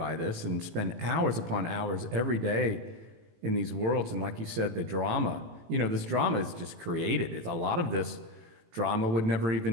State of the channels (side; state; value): left; late; 18 ms